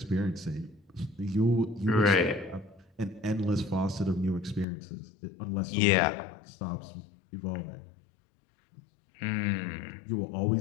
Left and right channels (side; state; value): right; drops out; at 4.7 s